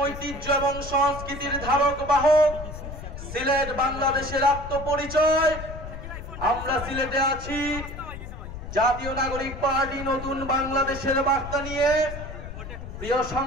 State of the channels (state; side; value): noise; left; rumble, 10 dB below the sound